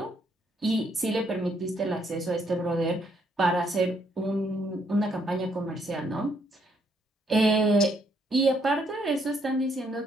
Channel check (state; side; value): normal; both; correlation 0.71